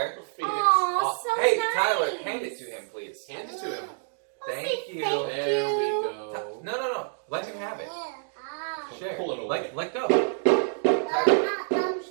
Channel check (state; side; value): silent; left; digital silence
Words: Aw, so Hey, nice. Tyler, hand it to him, please. Hand it to him. Thank you. Thank There we you. go. No. Let him have it. Share. Pull it away. Let go. Tyler.